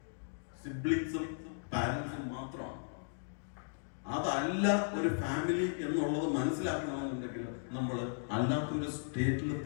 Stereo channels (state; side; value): silent; right; digital silence